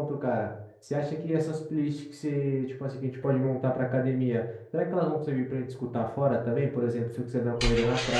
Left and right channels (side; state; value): both; identical; correlation 1.00